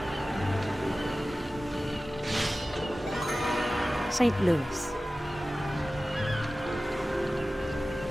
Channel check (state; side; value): normal; both; correlation 0.96